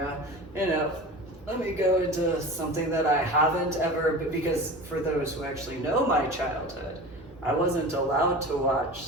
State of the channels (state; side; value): normal; both; correlation 0.34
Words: you know. Let me go into something that I haven't ever, because for those who actually know my childhood, I wasn't allowed to watch